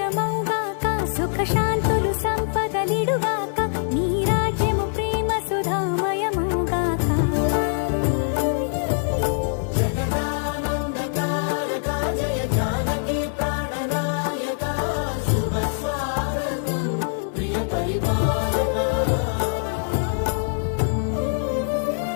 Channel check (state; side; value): silent; right; 63 dB below the other